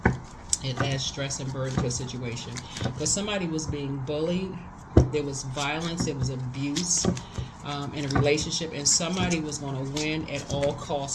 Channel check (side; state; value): both; identical; correlation 1.00